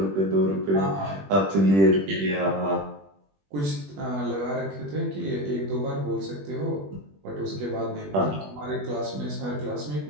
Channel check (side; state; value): left; late; 21 ms